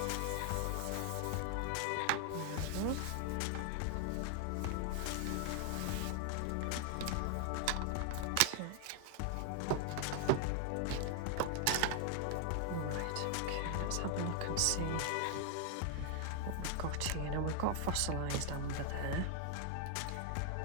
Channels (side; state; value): both; different; correlation 0.00